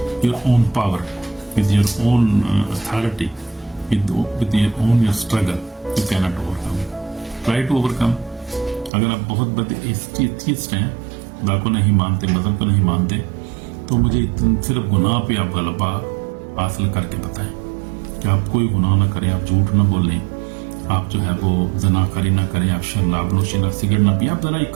your own power, with your own authority, with your own your struggle. You cannot overcome. Try to overcome. अगर आप बहुत बड़े atheist हैं, खुदा को नहीं मानते, मजहब को नहीं मानते, तो मुझे सिर्फ गुनाह पे आप गलबा हासिल करके बताएं कि आप कोई गुनाह ना करें, आप झूठ ना बोलें, आप जो है वो जनाकारी ना करें, आप शराब नोशी ना, सिगरेट ना पिए। आप जरा ये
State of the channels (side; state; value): left; drops out; at 8.9 s